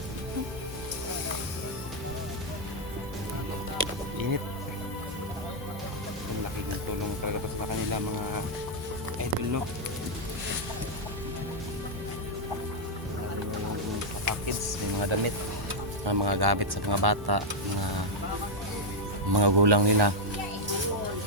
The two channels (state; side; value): normal; both; correlation -0.02